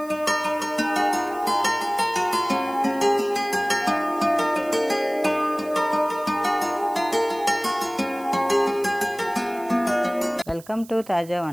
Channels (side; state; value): right; noise; hiss, 22 dB below the sound